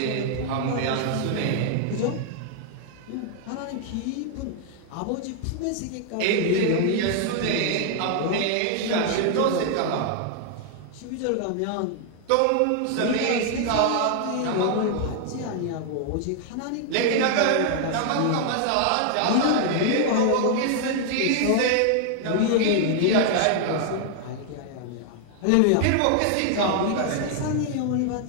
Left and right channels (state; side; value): different; both; correlation 0.00